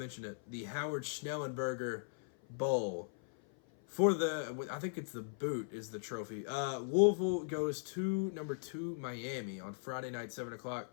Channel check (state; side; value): silent; right; 52 dB below the other